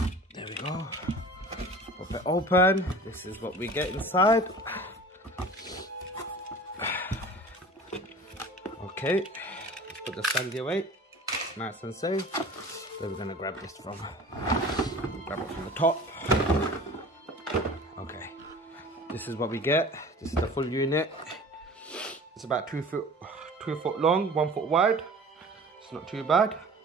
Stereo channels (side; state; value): both; normal; correlation 0.42